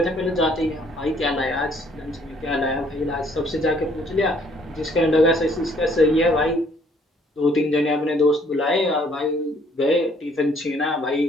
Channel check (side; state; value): both; normal; correlation 0.63